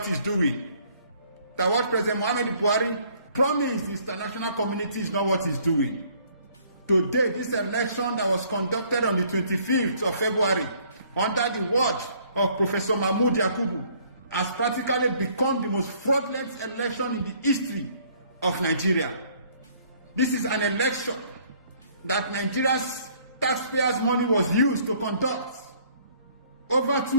he's doing. That what President Muhammad Buhari promise the international community is not what he's doing. Today, this election that was conducted on the 25th of February under the watch of Professor Mahmoud Yakubu has practically become the most fraudulent election in the history of Nigeria. This is an election that Nigeria's taxpayers' money was used to conduct. Over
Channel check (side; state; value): both; inverted; correlation -0.60